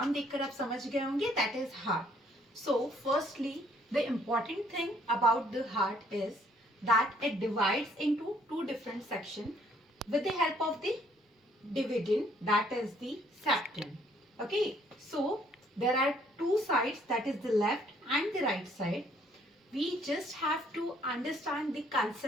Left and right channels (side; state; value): both; normal; correlation 0.64